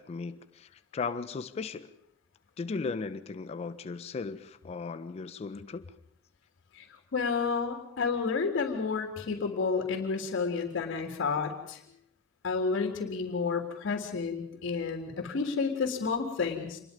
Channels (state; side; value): quieter; right; 4.5 dB